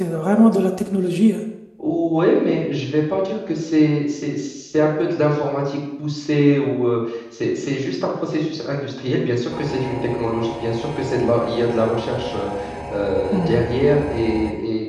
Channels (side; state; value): both; identical; correlation 1.00